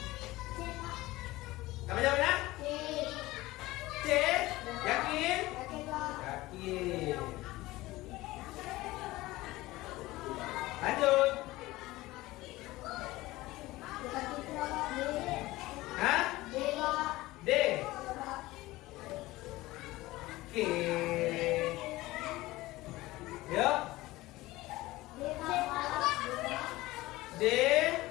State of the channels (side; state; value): right; quieter; 18.7 dB